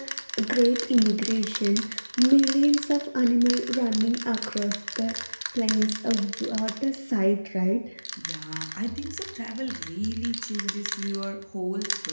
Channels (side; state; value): both; inverted; correlation -1.00